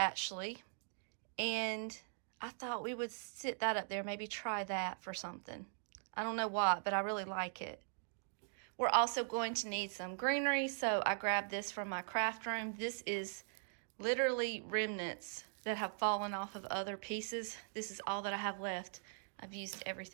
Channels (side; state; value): left; silent; digital silence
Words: And I thought we would sit that up there, maybe try that for something. I don't know what, but I really like it. We're also going to need some greenery, so I grabbed this from my craft room. This is literally remnants that have fallen off of other pieces. This is all that I have left. I've used